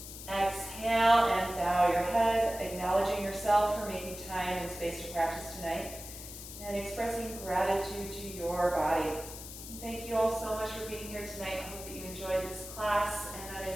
Exhale and bow your head, acknowledging yourself for making time and space to practice tonight, and expressing gratitude to your body. Thank you all so much for being here tonight. I hope that you enjoyed this class, and that I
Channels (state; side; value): noise; left; hiss, 12 dB below the sound